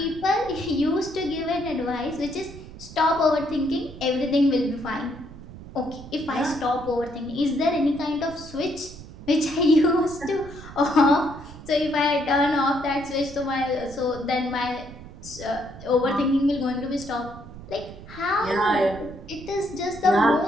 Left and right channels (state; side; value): noise; right; rumble, 15 dB below the sound